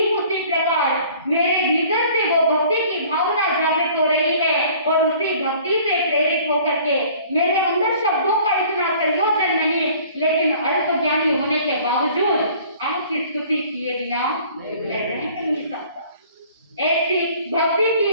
उसी प्रकार मेरे भीतर से वो भक्ति की भावना जागृत हो रही है और उसी भक्ति से प्रेरित होकर के मेरे अंदर शब्दों का इतना संयोजन नहीं, लेकिन अल्प ज्ञानी होने के बावजूद आपकी स्तुति किए बिना मैं रह नहीं सकता। ऐसी भक्ति की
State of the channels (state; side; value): inverted; both; correlation -0.52